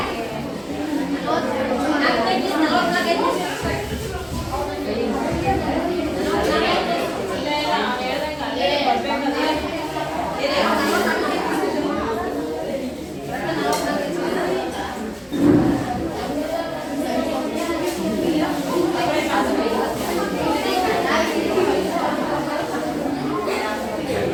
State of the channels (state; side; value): identical; both; correlation 1.00